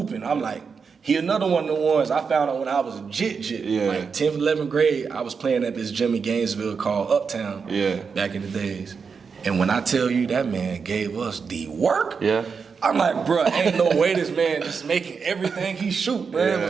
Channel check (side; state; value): left; quieter; 5.6 dB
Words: I'm like, he another one of the ones I found out when I was a jit. Yeah. Like 10th, 11th grade, I was playing at this gym in Gainesville called Uptown back in the days. And when I tell you that man gave us the work, I'm like, bro, ain't no way this man just making everything he shoot, bro. It